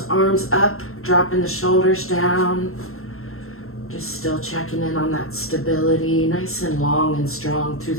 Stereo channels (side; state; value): right; late; 0.62 ms